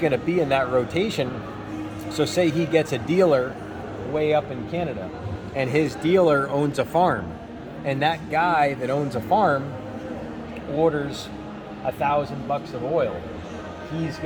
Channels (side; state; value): both; identical; correlation 1.00